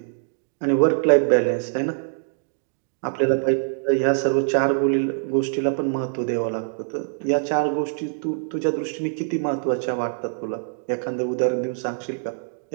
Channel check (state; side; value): silent; left; digital silence